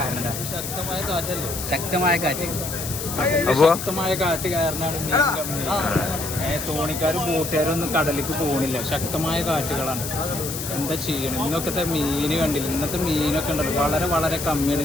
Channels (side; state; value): left; noise; hiss, 6 dB below the sound